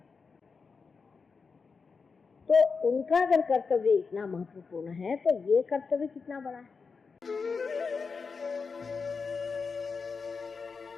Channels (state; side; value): quieter; right; 5.0 dB